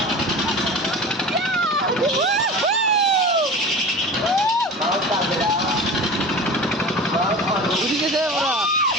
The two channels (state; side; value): normal; both; correlation 0.34